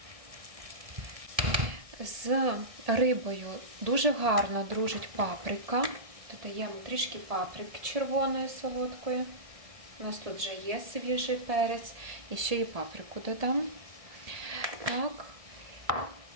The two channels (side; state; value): left; late; 1.7 ms